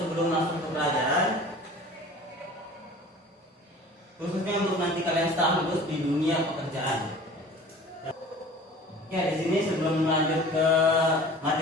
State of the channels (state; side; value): normal; both; correlation 0.43